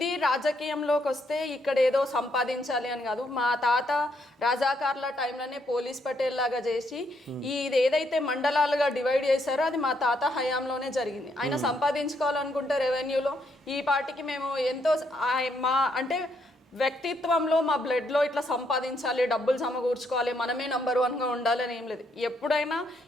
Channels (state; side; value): normal; both; correlation 0.74